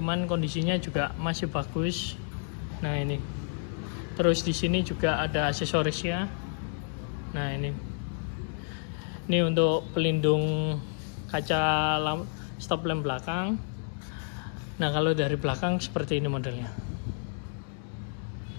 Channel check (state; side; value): silent; right; 58 dB below the other